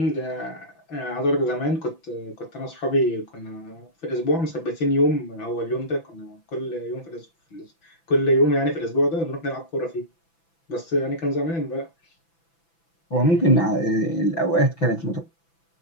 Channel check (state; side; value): late; right; 6.0 ms